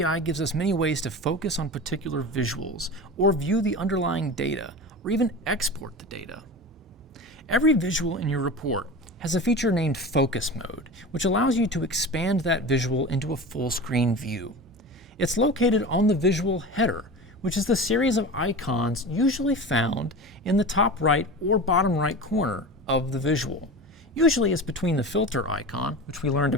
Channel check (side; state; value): both; normal; correlation 0.30